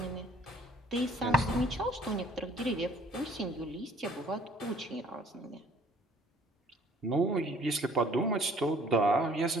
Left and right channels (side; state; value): both; normal; correlation 0.57